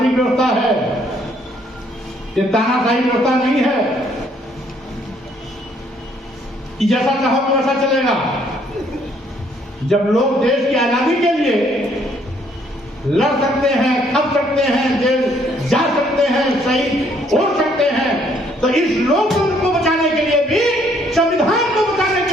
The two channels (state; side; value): normal; both; correlation 0.66